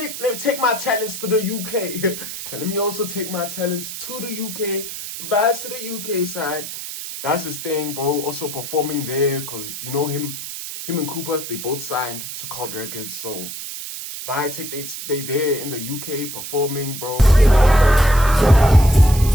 my talents to the UK. Let me also take my talents to the UK, vibes to the UK side. That's his thing, bro. Also performing there, because you know him and Koopa, they both signed to Cult Records, so they there in the UK performing, bro.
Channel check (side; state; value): right; noise; hiss, 8 dB below the sound